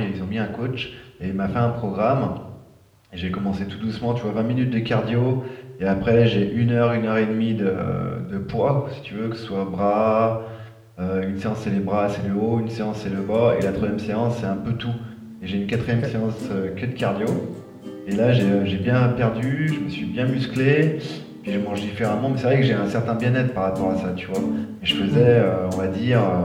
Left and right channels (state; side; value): identical; both; correlation 1.00